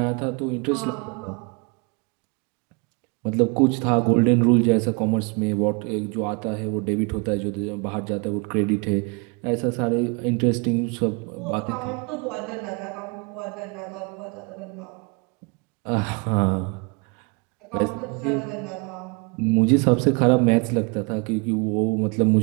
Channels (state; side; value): quieter; left; 31.9 dB